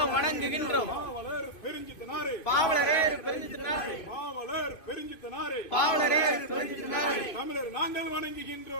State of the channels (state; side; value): late; right; 2.5 ms